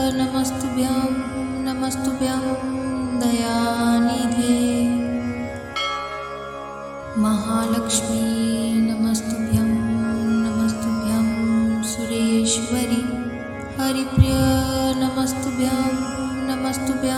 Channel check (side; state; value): both; identical; correlation 1.00